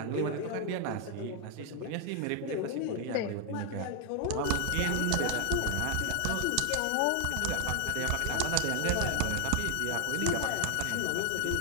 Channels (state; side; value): different; both; correlation 0.00